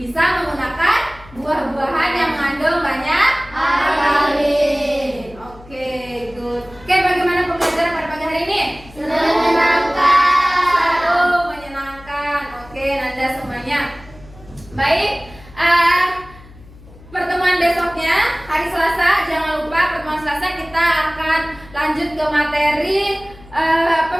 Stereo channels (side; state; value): left; noise; hum, 21 dB below the sound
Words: menggunakan buah-buahan yang mengandung banyak alkali. Oke, good. Oke, bagaimana pembelajaran pada pagi hari ini? Selalu menyenangkan. Oke, Nanda semuanya. Baik. Pertemuan besoknya hari Selasa, jangan lupa pertemuan Selasa kita akan lanjut ke materi